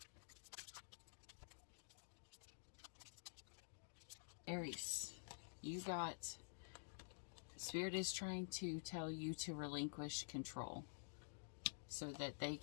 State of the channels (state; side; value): silent; right; digital silence